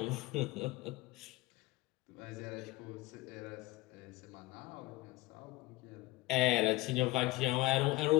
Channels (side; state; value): right; quieter; 19.9 dB